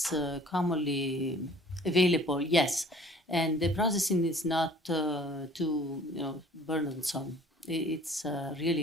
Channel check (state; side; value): normal; both; correlation 0.51